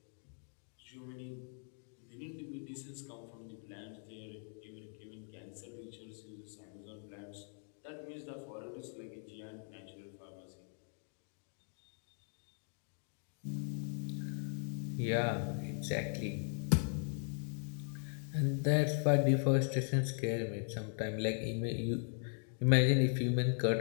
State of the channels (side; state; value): right; silent; 52 dB below the other